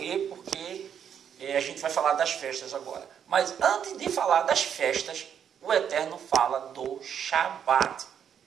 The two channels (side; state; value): left; quieter; 8.4 dB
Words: porque a gente vai falar das festas agora. Mas antes de falar das festas, o Eterno fala do Shabat.